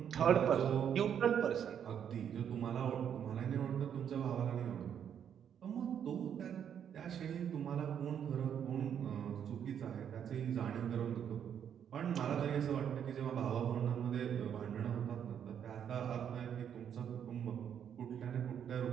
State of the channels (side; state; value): left; quieter; 8.7 dB